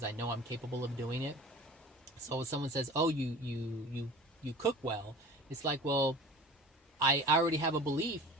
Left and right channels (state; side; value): normal; both; correlation 0.40